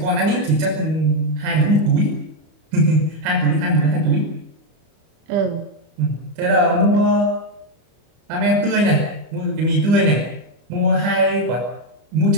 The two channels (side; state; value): left; late; 25 ms